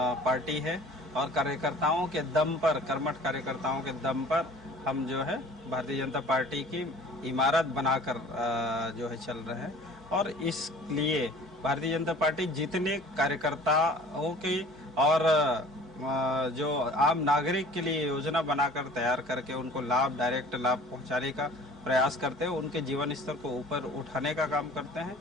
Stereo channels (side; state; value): both; normal; correlation 0.47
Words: पार्टी है और कार्यकर्ताओं के दम पर, कर्मठ कार्यकर्ताओं के दम पर हम जो है भारतीय जनता पार्टी की इमारत बनाकर जो है चल रहे हैं और इसलिए भारतीय जनता पार्टी जितने कार्यकर्ताओं की और जो आम नागरिक के लिए योजना बनाकर तैयार करके उनको लाभ, डायरेक्ट लाभ पहुंचाने का प्रयास करते हैं, उनके जीवन स्तर को ऊपर उठाने का काम करते हैं